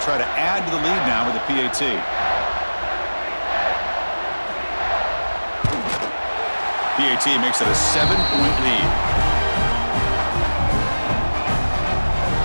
try to add to the lead now with the PAT. PAT makes it a 7-point lead.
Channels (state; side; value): inverted; both; correlation -1.00